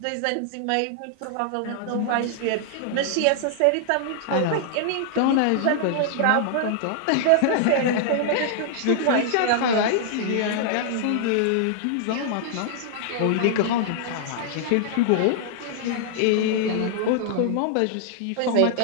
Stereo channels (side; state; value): both; different; correlation -0.01